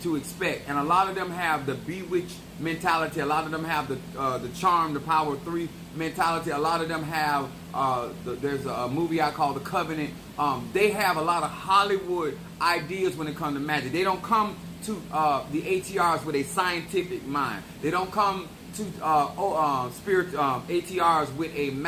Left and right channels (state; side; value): identical; both; correlation 1.00